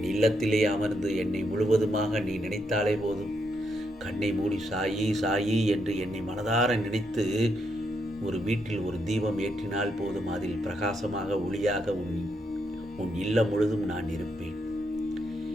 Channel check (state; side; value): normal; both; correlation 0.79